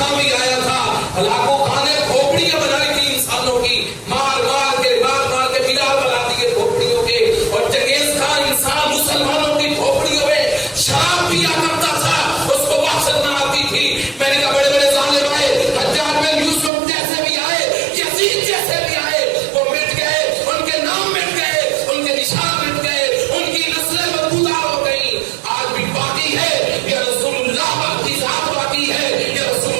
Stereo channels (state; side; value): drops out; left; at 16.7 s